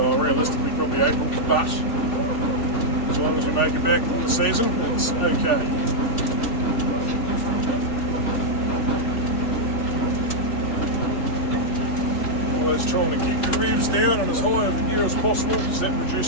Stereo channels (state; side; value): late; right; 3.4 ms